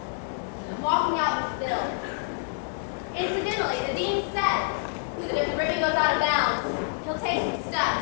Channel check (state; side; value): silent; right; 60 dB below the other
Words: I'm walking out with Bill. Incidentally, the dean said that if the ribbon goes out of bounds, he'll take some